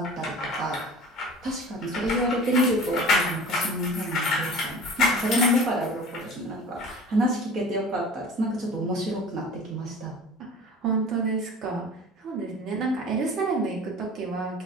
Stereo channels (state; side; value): normal; both; correlation 0.41